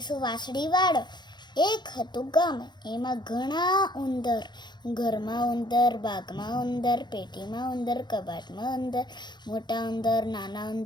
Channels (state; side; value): late; right; 0.21 ms